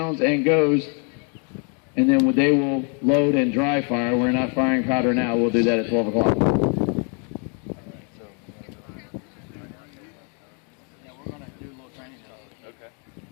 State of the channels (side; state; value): right; quieter; 39.0 dB